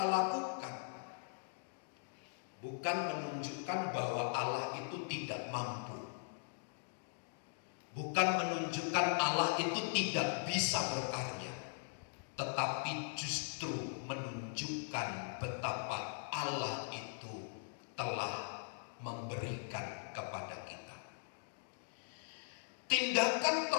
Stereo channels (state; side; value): silent; right; digital silence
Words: bukan menunjukkan bahwa Allah itu tidak mampu, bukan menunjukkan Allah itu tidak bisa berkarya, tetapi justru menunjukkan betapa Allah itu telah memberikan kepada kita. Tindakan